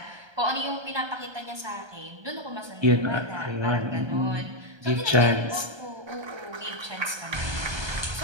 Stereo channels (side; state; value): left; late; 1.3 ms